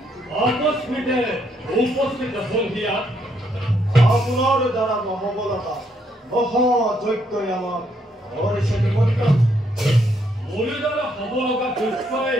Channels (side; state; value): both; normal; correlation 0.73